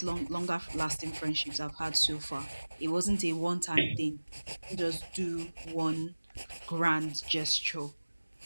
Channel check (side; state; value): both; inverted; correlation -1.00